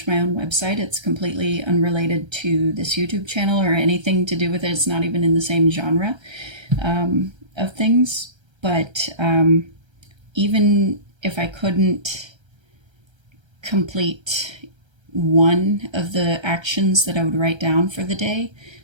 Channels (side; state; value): left; late; 1.3 ms